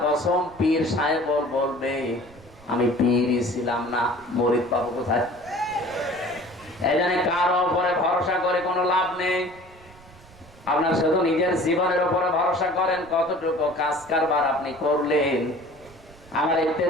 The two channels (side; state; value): right; noise; rumble, 23 dB below the sound